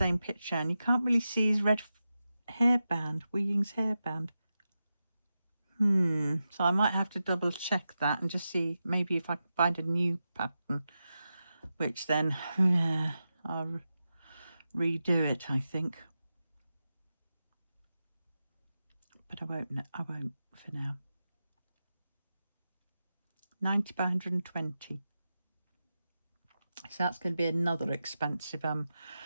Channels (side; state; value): both; inverted; correlation -0.91